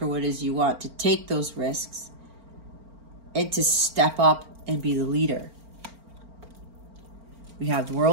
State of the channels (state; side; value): late; left; 4.4 ms